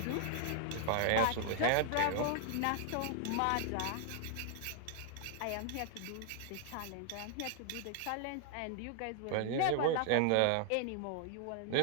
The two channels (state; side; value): different; both; correlation 0.00